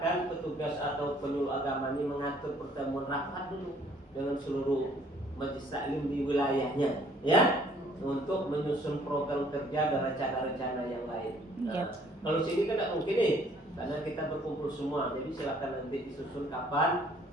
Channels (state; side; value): normal; both; correlation 0.60